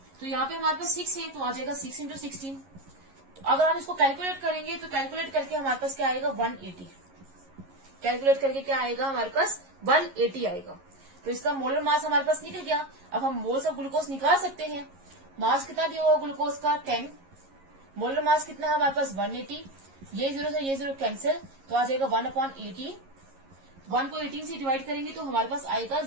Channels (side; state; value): left; late; 11 ms